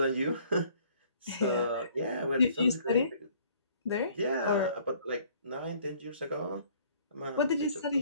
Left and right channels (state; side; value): inverted; both; correlation -0.58